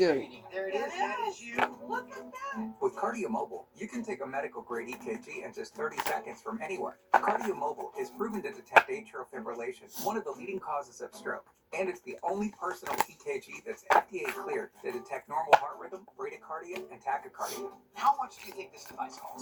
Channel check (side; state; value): both; identical; correlation 1.00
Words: There it is. That is you. Look at that. With KardioMobile, you can take a medical-grade EKG in just 30 seconds from anywhere. KardioMobile is proven to detect atrial fibrillation, one of the leading causes of stroke. And it's the only personal EKG that's FDA cleared to detect normal heart rhythm, bradycardia, and tachycardia. How much do you think this device